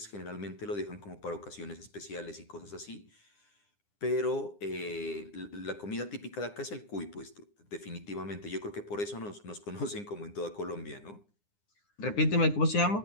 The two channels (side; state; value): right; late; 9.8 ms